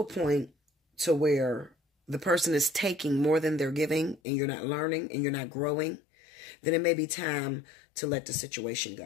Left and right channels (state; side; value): drops out; right; at 4.2 s